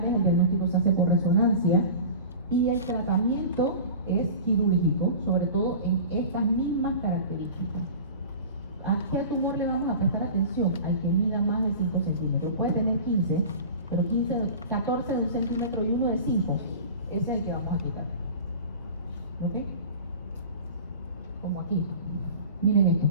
el diagnóstico se hace por resonancia y el tratamiento es quirúrgico, sobre todo en estas mismas características. ¿A qué tumor le vamos a prestar atención? Al que mida más de 5 centímetros. Puede tener 15, pero 14 de 1 centímetro y uno de 5, ese es el que vamos a quitar. ¿Ok? Como aquí. Miren esto.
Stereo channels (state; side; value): inverted; both; correlation -0.36